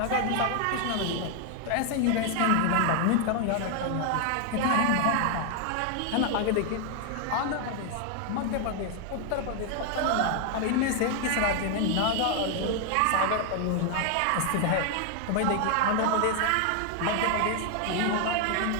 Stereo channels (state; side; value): different; both; correlation 0.00